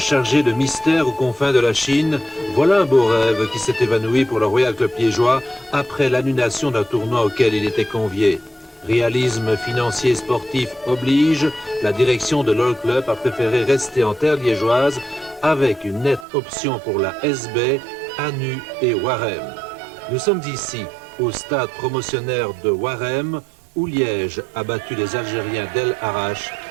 de mystères aux confins de la Chine, voilà un beau rêve qui s'est évanoui pour le Royal Club liégeois après l'annulation d'un tournoi auquel il était convié. Réalisme financier et sportif oblige, la direction de l'All Club a préféré rester en terre liégeoise avec une nette option pour la SB, Anu et Warem. Nous sommes ici, au stade promotionnaire de Warem, où Liège a battu les Algériens d'El Arach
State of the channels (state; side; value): drops out; left; at 16.2 s